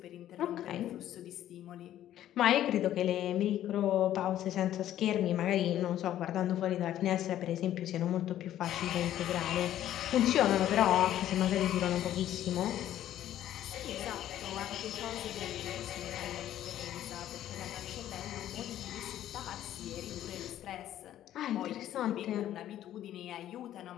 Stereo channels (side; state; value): right; quieter; 12.2 dB